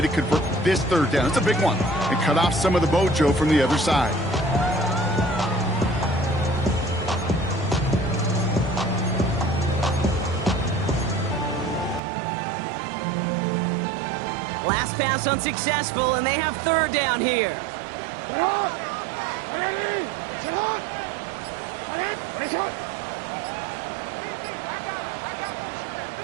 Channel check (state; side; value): drops out; left; at 12.0 s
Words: to convert this 3rd down. It's a big one. And cut off some of the mojo from the other side. Last pass unsuccessful, and they have 3rd down here.